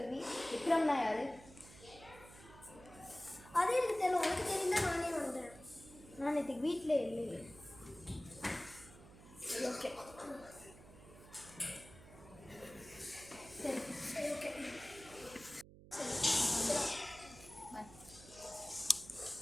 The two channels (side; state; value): right; noise; hum, 19 dB below the sound